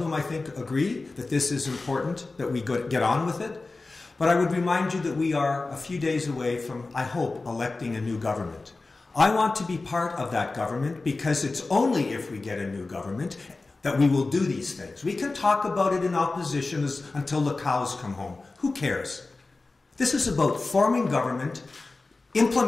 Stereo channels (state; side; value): quieter; right; 3.5 dB